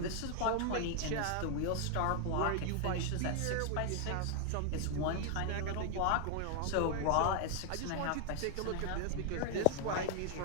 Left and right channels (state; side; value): different; both; correlation 0.00